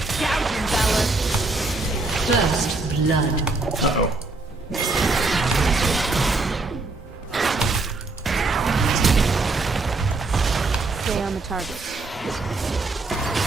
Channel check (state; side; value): quieter; left; 3.4 dB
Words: First blood. Uh-oh. Stay on the target.